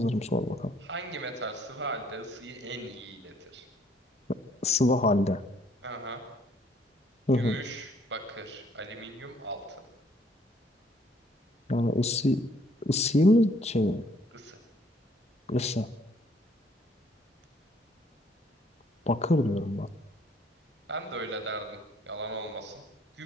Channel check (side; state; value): both; normal; correlation 0.63